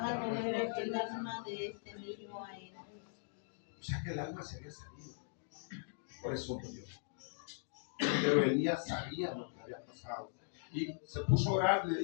volver el alma de este niño a él. O sea que el alma se había salido. Por eso murió. Pero Elías sabía lo que había pasado. Y se puso a orar y le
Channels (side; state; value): right; silent; digital silence